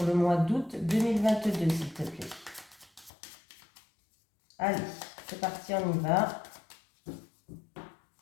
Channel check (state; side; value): drops out; right; at 3.1 s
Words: le mois d'août 2022, s'il te plaît. Allez, c'est parti, on y va.